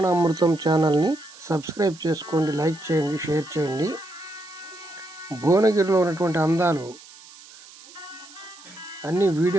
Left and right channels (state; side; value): noise; right; hiss, 20 dB below the sound